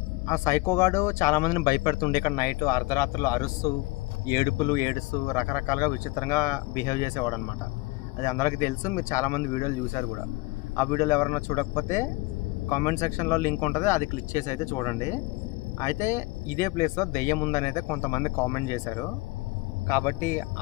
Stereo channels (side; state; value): right; quieter; 22.3 dB